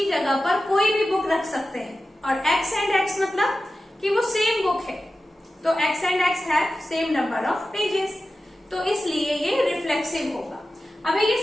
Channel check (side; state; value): both; normal; correlation 0.93